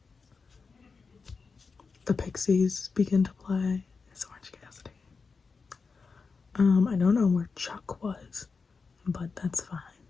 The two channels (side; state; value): right; quieter; 4.8 dB